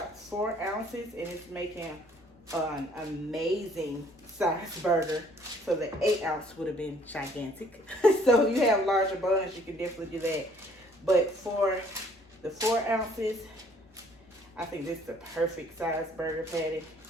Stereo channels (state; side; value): normal; both; correlation 0.60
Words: 4 ounces and it's making an amazing size burger. So the 8 ounce would have been gigantic. So if you have larger buns, you can definitely do that. But for the 4 ounces, I think this is the perfect size burger patty.